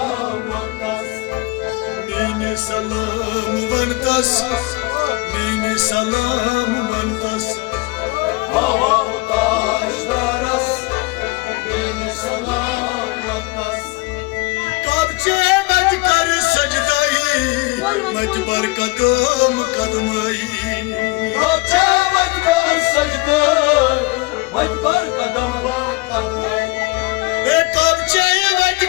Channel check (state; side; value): quieter; right; 23.6 dB